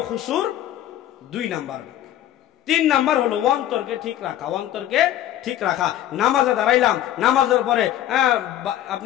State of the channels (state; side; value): quieter; right; 12.5 dB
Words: খুশুর 2 নাম্বার। 3 নাম্বার হলো অন্তরকে ঠিক রাখা, অন্তরকে ঠিক রাখা। নামাজে দাঁড়াইলাম, নামাজের পরে